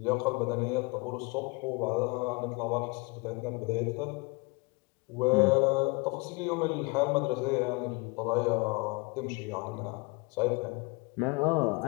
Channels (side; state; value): right; quieter; 28.5 dB